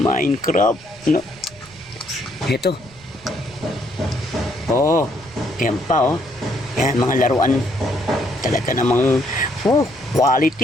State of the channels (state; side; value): noise; right; rumble, 24 dB below the sound